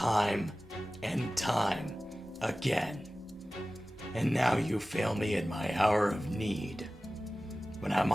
and time again. And now you fail me in my hour of need, when I'm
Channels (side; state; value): both; normal; correlation 0.97